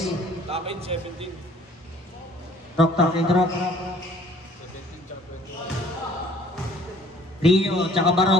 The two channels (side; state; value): both; normal; correlation 0.55